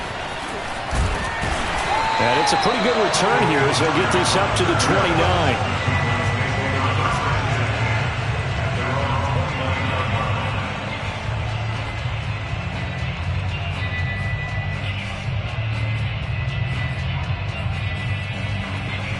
And it's a pretty good return here as they'll get this up to the 29.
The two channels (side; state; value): both; identical; correlation 1.00